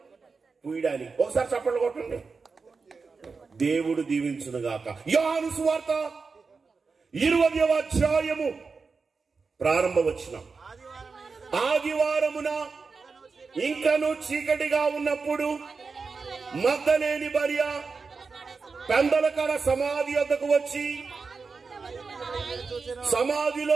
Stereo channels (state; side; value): quieter; left; 4.7 dB